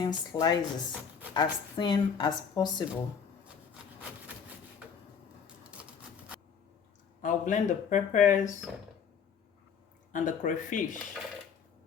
slices, as thin as possible. I'll blend the peppers and the crayfish.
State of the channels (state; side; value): quieter; right; 6.8 dB